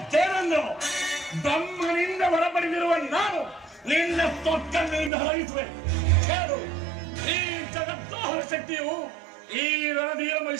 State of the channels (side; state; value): left; drops out; at 5.1 s